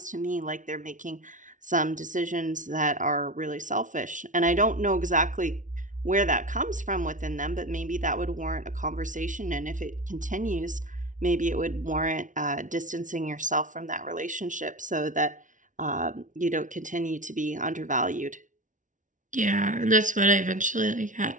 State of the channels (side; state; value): left; late; 0.37 ms